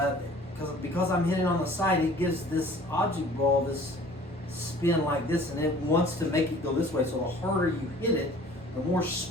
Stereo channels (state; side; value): normal; both; correlation 0.49